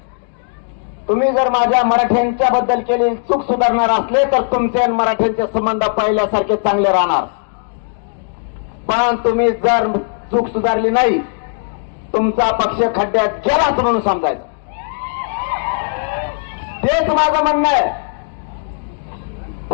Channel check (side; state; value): right; silent; digital silence